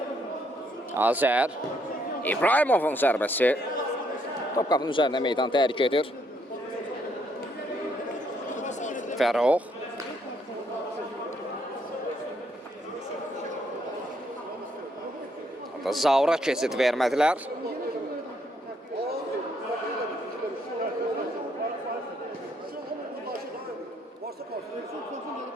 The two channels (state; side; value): normal; both; correlation 0.72